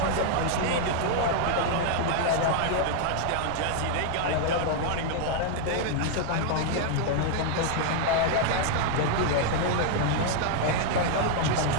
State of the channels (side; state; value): both; different; correlation 0.00